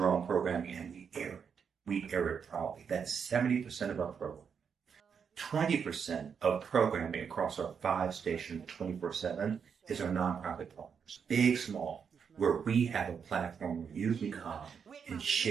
own programming, and we air it. We air it proudly. That's 70% of our program. 20% of programming across our 5 stations 24/7 is our nonprofit partners, big, small, where we have a platform where you can come and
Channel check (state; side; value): quieter; left; 6.7 dB